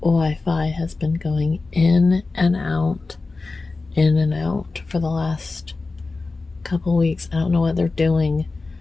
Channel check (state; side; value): quieter; right; 3.7 dB